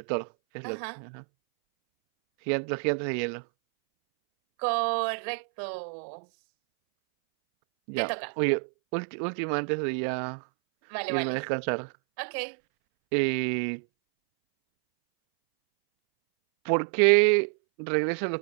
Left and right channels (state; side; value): silent; left; 59 dB below the other